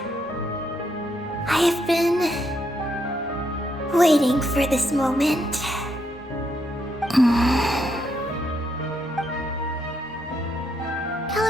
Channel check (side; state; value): both; normal; correlation 0.77